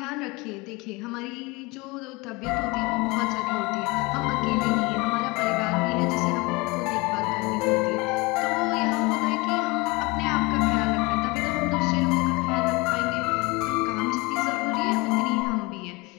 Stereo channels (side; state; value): right; quieter; 24.9 dB